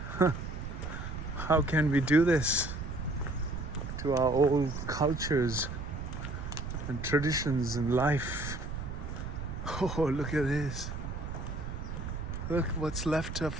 How can we do this to our old cultures and traditions and life? Oh, look at this. Look what's left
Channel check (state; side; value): noise; right; rumble, 6 dB below the sound